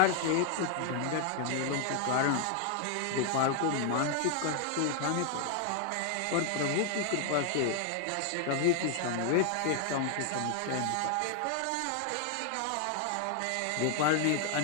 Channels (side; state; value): both; different; correlation 0.00